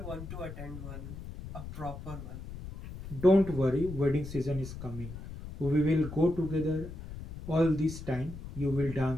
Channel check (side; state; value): left; noise; rumble, 10 dB below the sound